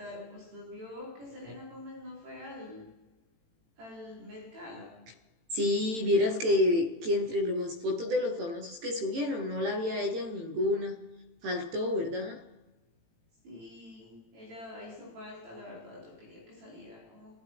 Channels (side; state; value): left; late; 18 ms